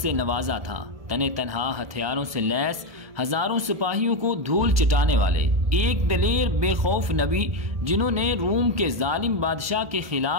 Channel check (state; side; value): late; left; 1.2 ms